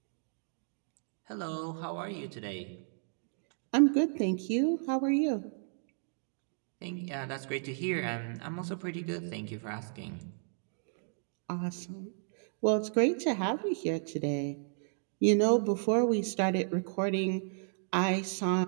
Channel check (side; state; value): left; silent; digital silence